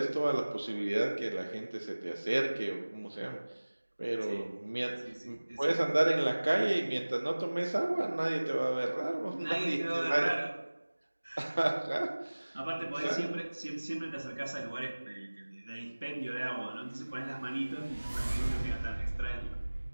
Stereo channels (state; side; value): inverted; both; correlation -1.00